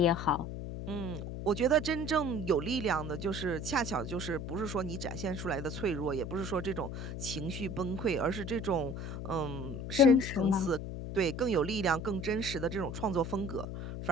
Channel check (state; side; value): noise; left; hum, 6 dB below the sound